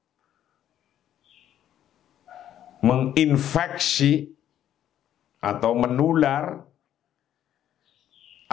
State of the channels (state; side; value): quieter; right; 11.1 dB